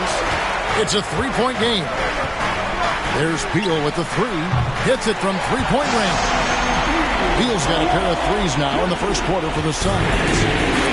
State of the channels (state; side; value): identical; both; correlation 1.00